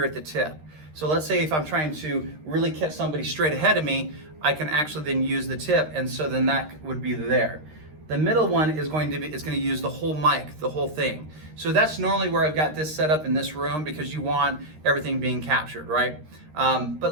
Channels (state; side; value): late; left; 13 ms